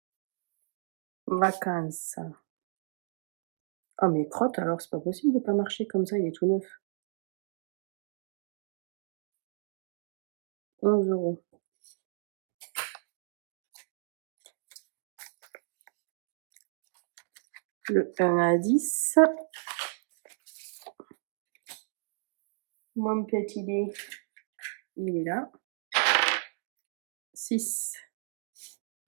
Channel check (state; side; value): silent; left; digital silence